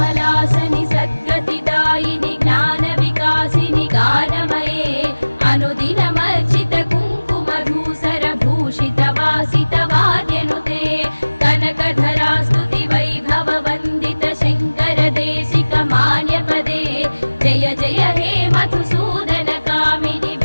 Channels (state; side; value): inverted; both; correlation -1.00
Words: सद्गतिदायिनि ज्ञानविकासिनि गानमये अनुदिनमर्चित कुङ्कुमधूसर भूषित वासित वाद्यनुते कनकधरा स्तुति वैभव वन्दित शङ्कर देशिक मान्यपदे जय जय हे मधुसूदन कामिनि